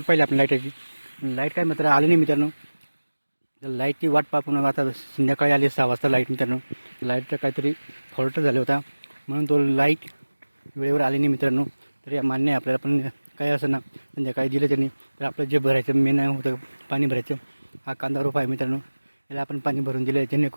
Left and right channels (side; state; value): both; inverted; correlation -1.00